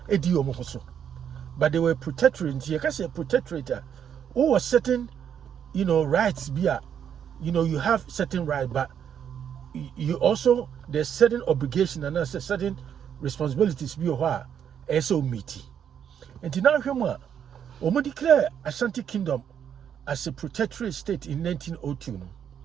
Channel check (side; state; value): left; quieter; 8.6 dB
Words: Ediomoso. But they were protectorate. You can say protectorate. Who was certain, you know, rights be you have certain right, but you also there's certain obligation and there's certain responsibilities be a so meaty. And now we declare Asante Kingdom as a protectorate state in 1902.